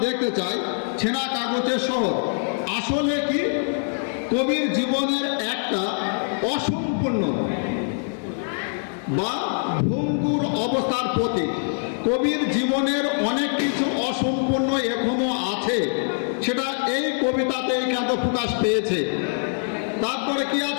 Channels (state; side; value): silent; right; 62 dB below the other